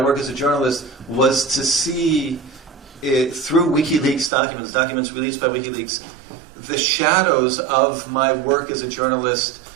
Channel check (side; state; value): left; drops out; at 4.3 s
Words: as a journalist was to see through WikiLeaks documents released by WikiLeaks, the shadows of my work as a journalist